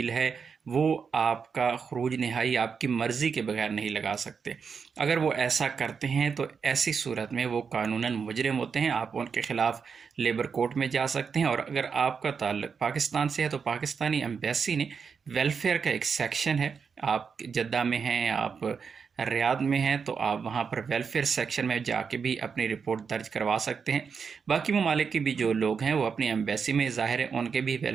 ہے، وہ آپ کا خروج نہائی آپ کی مرضی کے بغیر نہیں لگا سکتے۔ اگر وہ ایسا کرتے ہیں تو ایسی صورت میں وہ قانوناً مجرم ہوتے ہیں، آپ ان کے خلاف لیبر کورٹ میں جا سکتے ہیں۔ اور اگر آپ کا تعلق پاکستان سے ہے تو پاکستانی ایمبیسی نے ویلفیئر کا ایک سیکشن ہے، آپ جدہ میں ہیں، آپ ریاض میں ہیں، تو آپ وہاں پر ویلفیئر سیکشن میں جا کے بھی اپنی رپورٹ درج کروا سکتے ہیں۔ باقی ممالک کے بھی جو لوگ ہیں وہ اپنی ایمبیسی میں، ظاہر ہے ان کے بھی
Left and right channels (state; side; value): quieter; left; 6.0 dB